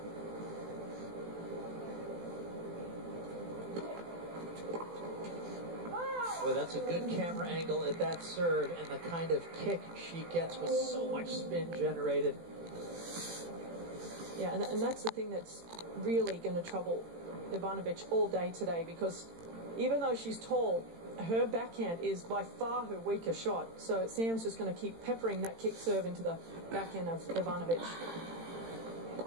Boy, that's a good camera angle at that serve, and the kind of kick she gets with so much spin generated. Yeah, and that's the thing that's really going to trouble Ivanovic all day today, because even though she's tall, her backhand is by far her weaker shot. So Sam's just going to keep peppering that kick serve into the backhand of Ivanovic.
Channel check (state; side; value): late; left; 18 ms